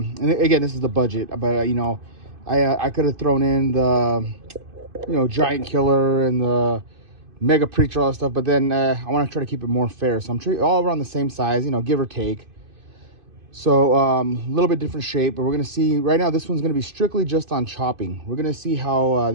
and again, this is the budget, but you know, I could have thrown in the, you know, Giant Killer and the Mega Preacher, all that stuff, but then I want to try to keep it more fair. So I'm treating all around the same size, you know, give or take. So a little bit different shape, but we're going to see right now, this one's going to be strictly just on chopping. We're going to see how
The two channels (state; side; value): late; left; 2.5 ms